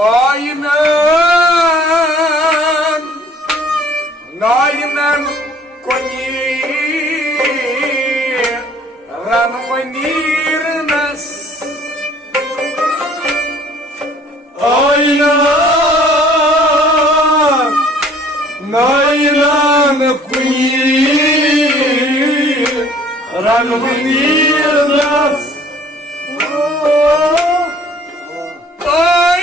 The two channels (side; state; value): both; normal; correlation 0.55